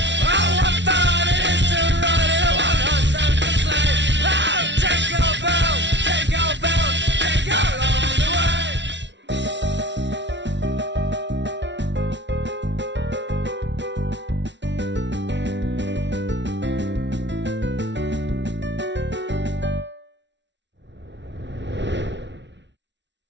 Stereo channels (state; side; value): late; left; 0.52 ms